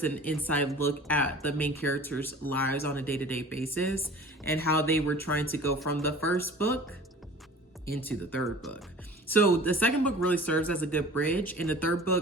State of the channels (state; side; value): normal; both; correlation 0.44